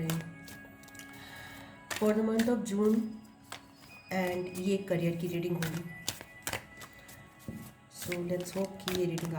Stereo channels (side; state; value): both; identical; correlation 1.00